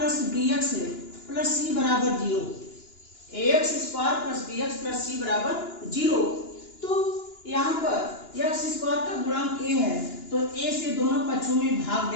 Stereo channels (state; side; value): late; right; 2.9 ms